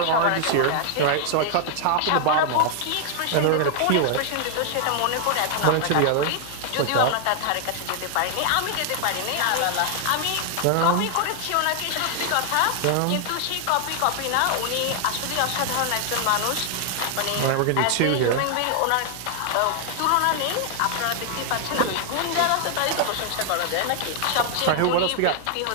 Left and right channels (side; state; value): both; different; correlation 0.00